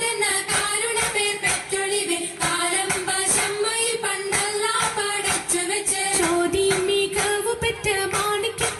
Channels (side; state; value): both; identical; correlation 1.00